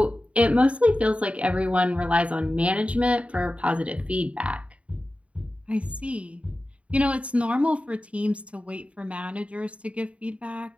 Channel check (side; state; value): left; late; 0.064 ms